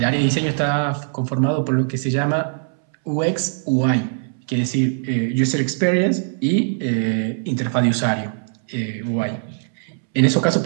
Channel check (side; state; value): left; silent; 65 dB below the other